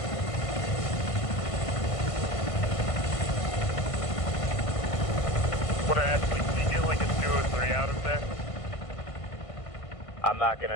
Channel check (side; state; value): right; late; 1.5 ms